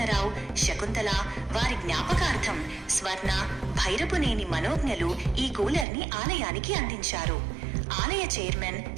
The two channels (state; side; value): drops out; left; at 5.9 s